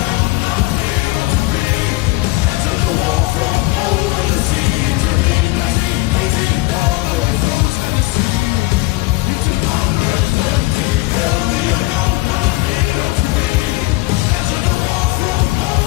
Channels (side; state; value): right; quieter; 20.6 dB